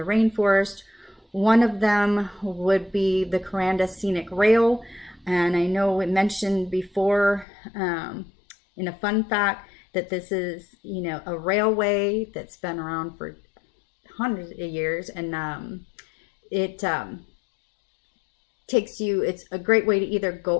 rainforest. One of them would be the Kuranda Scenic Rail, and I know we mentioned before in a fun fact that this is, a railway that's been around for hundreds of years, and it takes you, it's a great way to either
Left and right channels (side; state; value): right; drops out; at 7.5 s